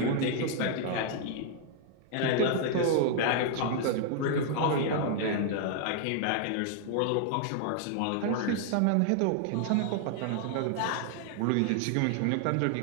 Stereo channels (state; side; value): different; both; correlation 0.00